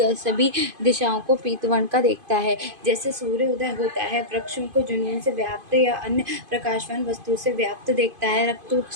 दिशाओं को पीतवर्ण का देखता है। जैसे सूर्य उदय होता है, वृक्षों को जुनून से व्याप्त या अन्य प्रकाशवान वस्तु से व्याप्त देखता है। रक्त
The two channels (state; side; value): late; left; 2.5 ms